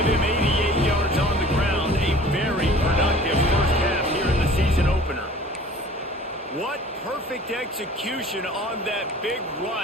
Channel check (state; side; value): normal; both; correlation 0.47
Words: him 88 yards on the ground. A very productive first half here in the season opener. What perfect execution on that big